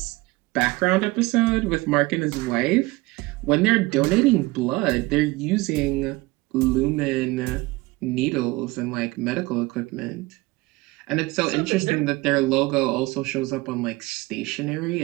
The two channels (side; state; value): left; quieter; 21.8 dB